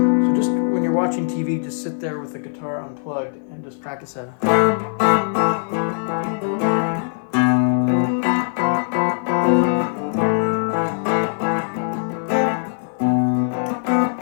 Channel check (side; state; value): right; silent; 56 dB below the other